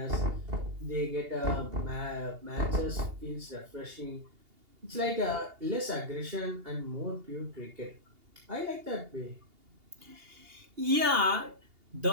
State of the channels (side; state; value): left; late; 2.8 ms